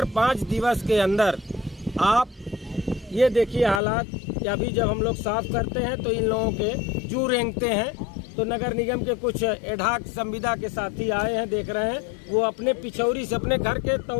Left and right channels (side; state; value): right; drops out; at 3.8 s